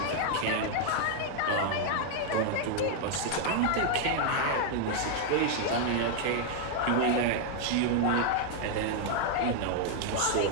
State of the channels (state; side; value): different; both; correlation 0.00